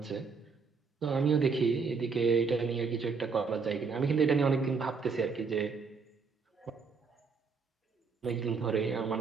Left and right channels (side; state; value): left; quieter; 5.1 dB